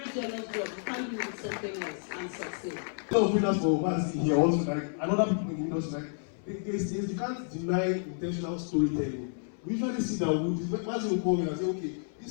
jealous job. You can't do with something else and succeed. A lot of winners for Mazi here also, like, and other people in the industry, like, you can't deny intentional storytelling. We usually see that Mazi will call me and say, okay,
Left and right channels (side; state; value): right; silent; 57 dB below the other